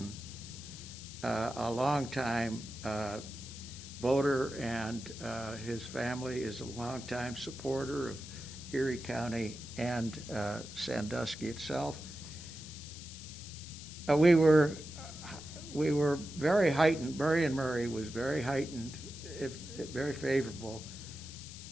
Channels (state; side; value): noise; left; hiss, 13 dB below the sound